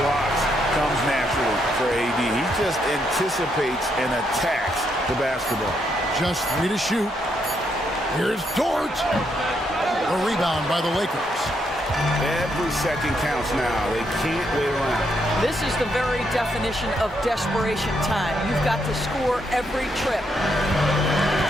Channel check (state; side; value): normal; both; correlation 0.77